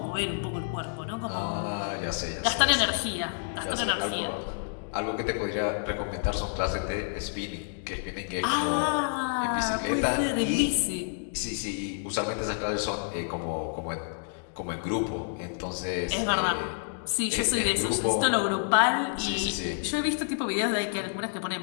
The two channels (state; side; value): silent; right; digital silence